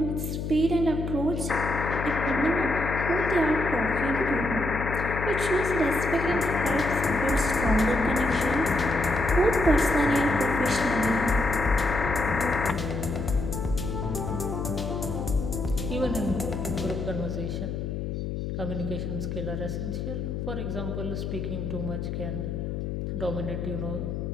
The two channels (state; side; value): noise; left; hum, 4 dB below the sound